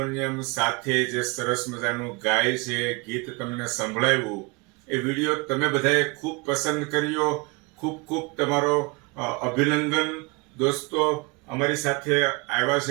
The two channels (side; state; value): left; quieter; 28.6 dB